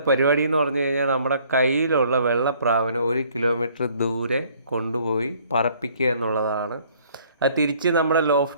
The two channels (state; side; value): inverted; both; correlation -0.60